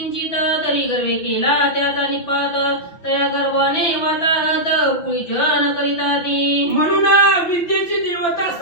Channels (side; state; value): right; late; 6.0 ms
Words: तरी गर्वे केला त्याचा निपात, तया गर्वाने वाताहत कुळीजन करिता ती. म्हणून विद्येची देवता